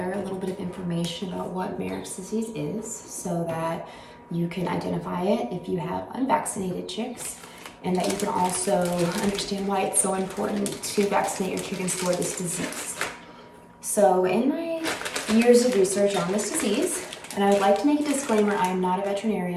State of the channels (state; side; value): identical; both; correlation 1.00